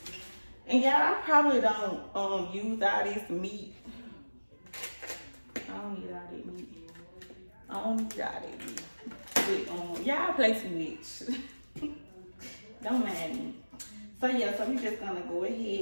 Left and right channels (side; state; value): both; inverted; correlation -1.00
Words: And yeah, I probably don't use all this meat. I don't need all that meat. I don't need all that meat. But y'all play too much. Don't mind me. So yeah, so we just gonna go